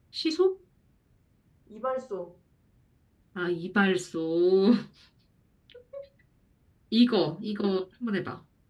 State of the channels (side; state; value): both; identical; correlation 1.00